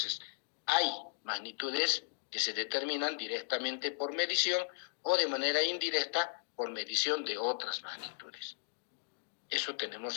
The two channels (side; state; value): right; silent; digital silence